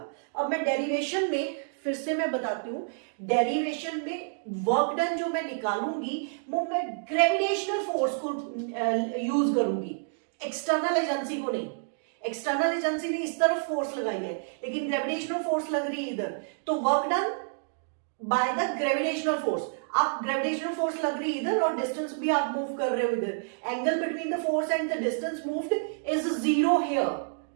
अब मैं डेरिवेशन में फिर से मैं बताती हूँ, डेरिवेशन में वर्क डन जो मैं निकालूंगी वो मैं ग्रेविटेशनल फोर्स को यूज करूंगी, एक्सटर्नल एजेंसी को नहीं। एक्सटर्नल एजेंसी ने इस तरफ फोर्स लगाई है, लेकिन ग्रेविटेशनल फोर्स लग रही है इधर, तो work done by the gravitational force. आप ग्रेविटेशनल फोर्स लग रही है इधर और डिस्टेंस भी आप मूव कर रहे हो इधर, angle between the force and the distance moved is zero here.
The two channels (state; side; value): silent; left; digital silence